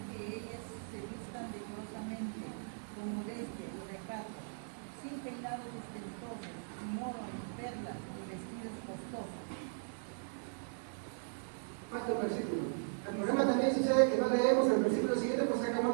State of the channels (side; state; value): left; silent; digital silence